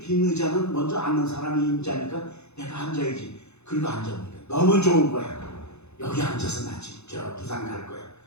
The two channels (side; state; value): right; late; 0.81 ms